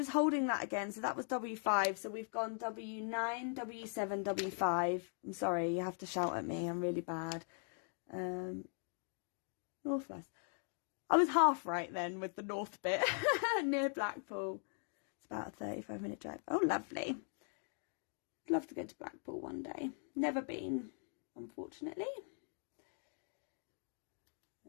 holding that again. So that was W5. So we've gone W9, W7, W5. I'm sorry, you have to shout at me. I'm really bad. Northwest. I was half right then with the north bit near Blackpool. It's about a 35-minute drive. Oh, lovely. I'd love to go to Blackpool one day. Never been, unfortunately.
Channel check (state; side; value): silent; right; 51 dB below the other